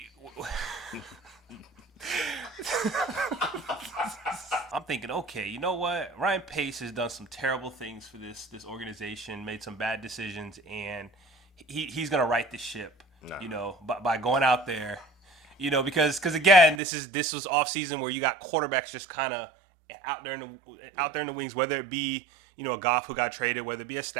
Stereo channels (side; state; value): left; drops out; at 16.8 s